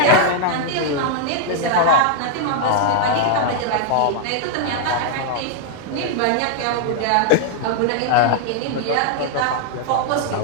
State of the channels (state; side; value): different; both; correlation 0.00